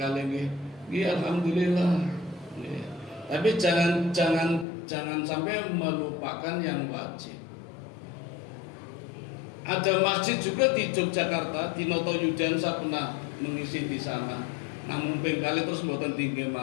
nih. Iya alhamdulillah. Nih. Tapi jangan sampai melupakan yang wajib. Ada masjid juga di Yogyakarta, di Noto Yudan saya pernah mengisi di sana. Namun pengkali terus mboten tinggi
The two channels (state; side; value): drops out; right; at 4.7 s